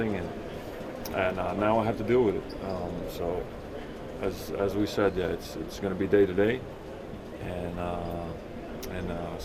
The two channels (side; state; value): both; identical; correlation 1.00